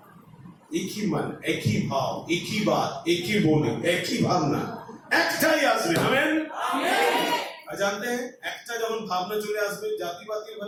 एक ही मन, एक ही भाव, एक ही बात, एक ही बोली, एक ही भावना, একটাই আসবে, আমেন। জানতে हैं একটা যখন ভাবনা চলে আসবে, জাতিবাদী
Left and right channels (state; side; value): identical; both; correlation 1.00